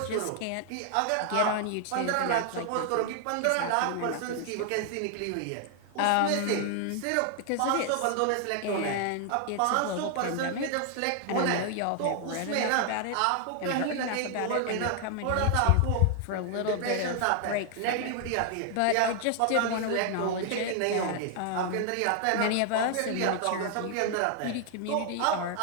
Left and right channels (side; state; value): both; different; correlation 0.00